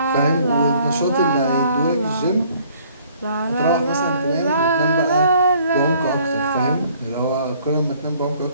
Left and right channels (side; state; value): both; inverted; correlation -0.59